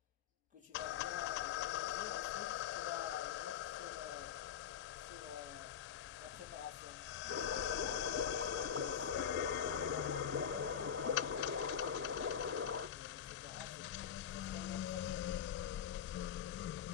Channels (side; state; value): right; quieter; 8.4 dB